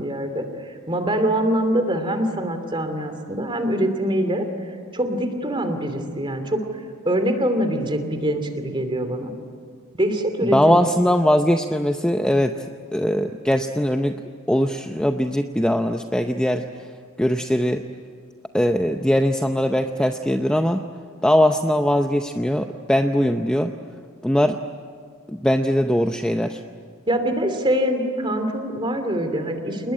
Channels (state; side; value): normal; both; correlation 0.79